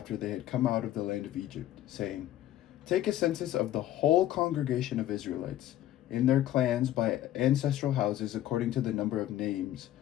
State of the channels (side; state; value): right; quieter; 13.2 dB